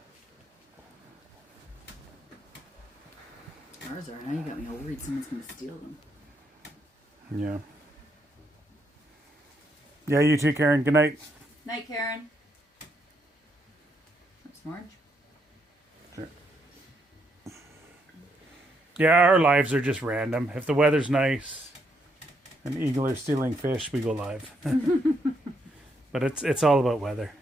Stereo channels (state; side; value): normal; both; correlation 0.76